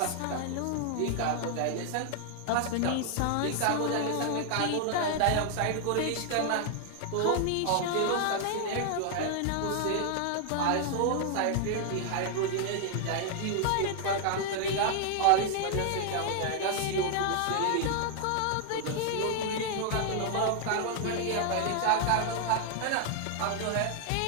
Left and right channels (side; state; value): both; different; correlation 0.00